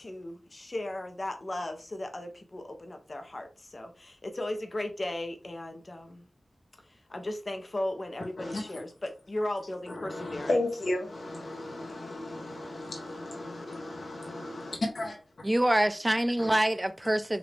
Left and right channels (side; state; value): both; normal; correlation 0.97